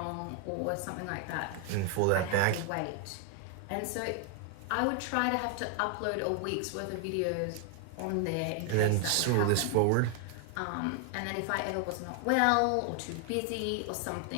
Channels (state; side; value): different; both; correlation 0.00